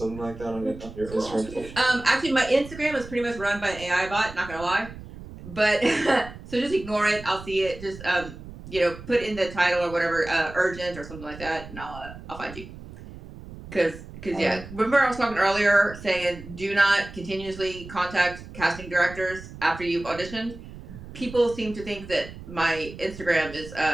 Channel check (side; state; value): right; noise; rumble, 14 dB below the sound